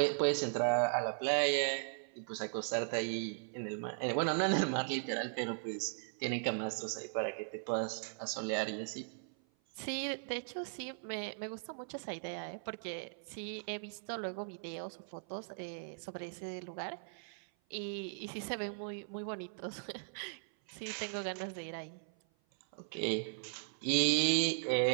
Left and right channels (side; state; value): left; silent; 52 dB below the other